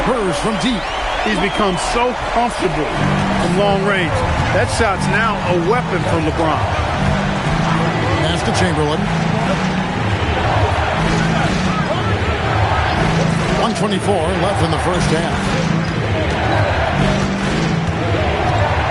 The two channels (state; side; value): identical; both; correlation 1.00